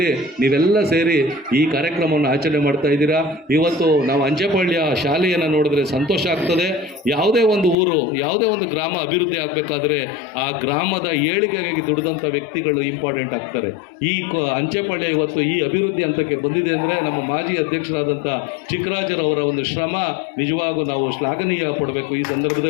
ನೀವೆಲ್ಲ ಸೇರಿ ಈ ಕಾರ್ಯಕ್ರಮವನ್ನು ಆಚರಣೆ ಮಾಡ್ತಾ ಇದ್ದೀರಾ. ಇವತ್ತು ನಾವು ಅಂಚೆಪಾಳ್ಯ ಶಾಲೆಯನ್ನು ನೋಡಿದ್ರೆ ಸಂತೋಷ ಆಗ್ತದೆ. ಯಾವುದೇ ಊರು, ಯಾವುದೇ ಗ್ರಾಮ ಅಭಿವೃದ್ಧಿ ಆಗಬೇಕಾದ್ರೆ ಆ ಗ್ರಾಮದ ಏಳಿಗೆಗಾಗಿ ದುಡಿದಂಥ ವ್ಯಕ್ತಿಗಳು ಇಂಪಾರ್ಟೆಂಟ್ ಆಗ್ತಾರೆ. ಈ ಅಂಚೆಪಾಳ್ಯ ಇವತ್ತು ಈ ಅಭಿವೃದ್ಧಿ ಹಂತಕ್ಕೆ ಬಂದಿದೆ ಅಂದರೆ ನಮ್ಮ ಮಾಜಿ ಅಧ್ಯಕ್ಷರಾದಂಥ ಚಿಕ್ಕರಾಜರವರ ಶ್ರಮ ನಿಜವಾಗೂ ನಾವು ಶ್ಲಾಘನೀಯ ಪಡಬೇಕು ಈ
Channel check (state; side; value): drops out; right; at 7.8 s